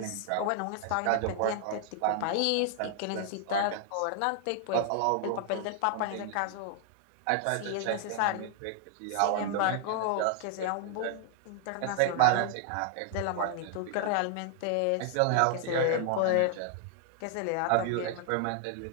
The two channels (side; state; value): both; different; correlation 0.00